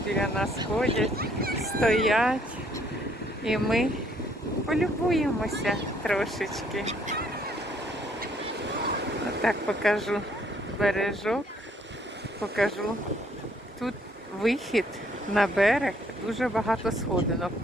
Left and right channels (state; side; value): normal; both; correlation 0.66